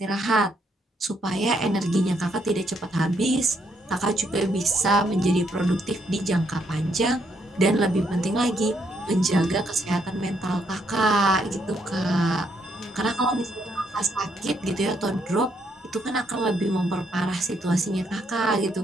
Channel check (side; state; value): both; normal; correlation 0.74